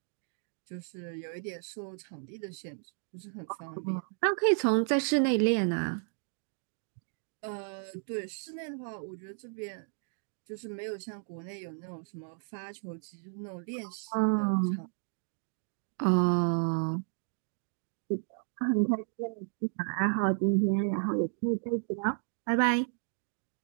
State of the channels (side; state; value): left; silent; 56 dB below the other